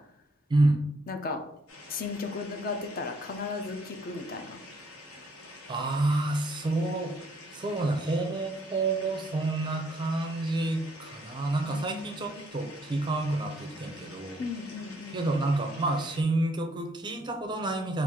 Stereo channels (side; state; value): both; normal; correlation 0.68